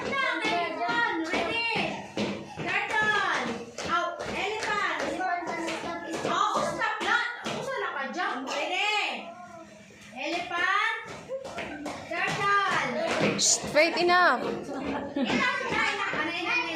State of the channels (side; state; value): both; identical; correlation 1.00